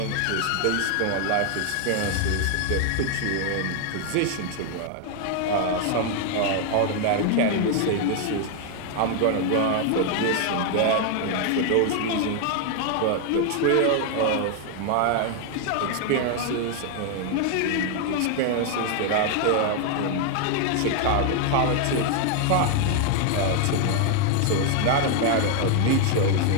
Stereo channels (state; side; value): different; both; correlation 0.00